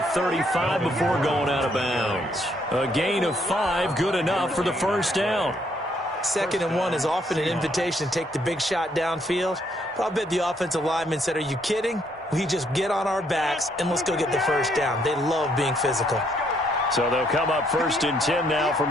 35 before going out of bounds. A gain of 5, good enough for the 1st down. 2nd and 1 is often an invitation to take the big shot downfield. But I'll bet the offensive lineman said, are you kidding? We just get on our backs and let's go get the 1st down. They love being physical. So they'll come up 1st and 10 now from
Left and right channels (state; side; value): normal; both; correlation 0.70